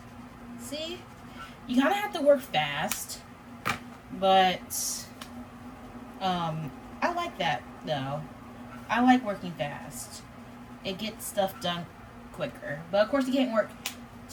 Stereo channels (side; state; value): both; identical; correlation 1.00